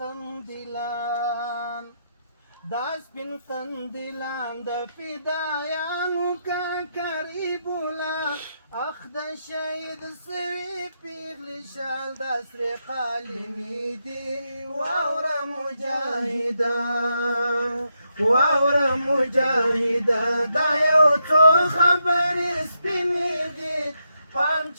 سپین قندیلان د فدایانو کاکرې بوله اخ د شهید سوي پیغلې شال دا سرې قالینې دي واوره مجاهده واوره مجاهده دا یو څو خبرې سپینې دي پام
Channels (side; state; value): both; inverted; correlation -0.82